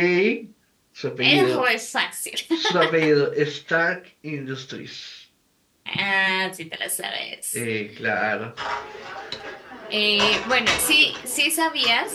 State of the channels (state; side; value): identical; both; correlation 1.00